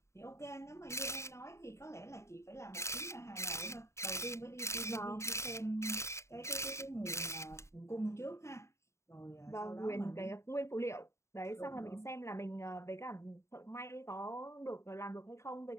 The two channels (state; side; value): late; right; 0.14 ms